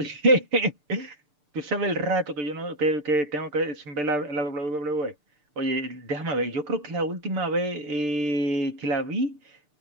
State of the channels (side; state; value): left; late; 6.8 ms